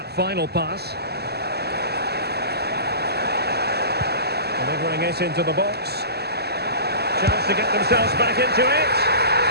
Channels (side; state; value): left; late; 0.47 ms